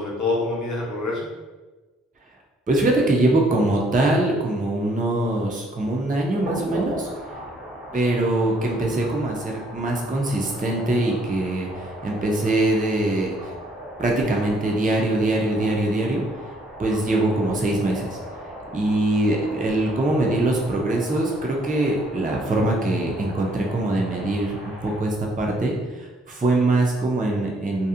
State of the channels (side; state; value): both; normal; correlation 0.67